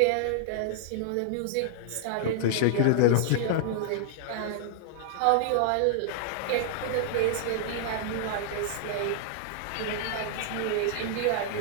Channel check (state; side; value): different; both; correlation -0.01